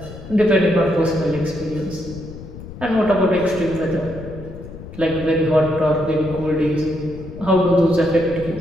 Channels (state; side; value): noise; left; rumble, 14 dB below the sound